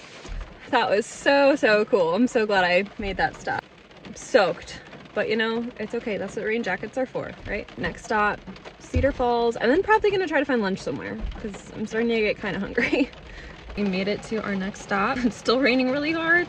That was so cool. I'm so glad I made that stop. I'm soaked, but you know, it's okay. That's what rain jackets are for, right? Next stop, Cedar Falls, and then probably gonna try to find lunch somewhere because I'm starting to get kind of hungry. We made it to our next stop. It's still raining really hard.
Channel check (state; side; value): identical; both; correlation 1.00